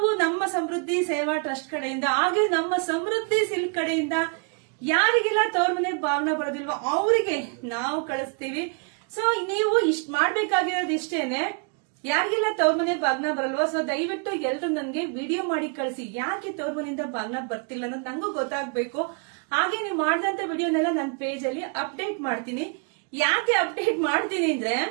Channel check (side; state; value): left; quieter; 37.4 dB